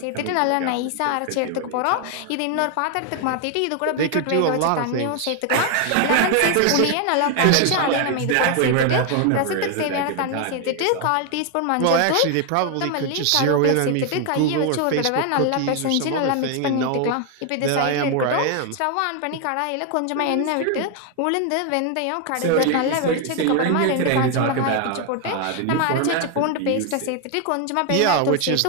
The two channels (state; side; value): different; both; correlation 0.01